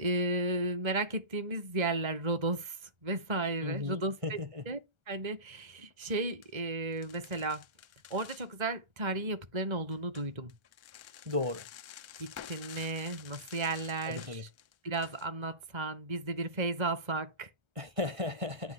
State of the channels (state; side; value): late; left; 1.3 ms